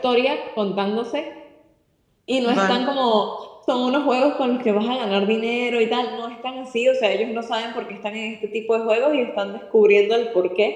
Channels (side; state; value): both; identical; correlation 1.00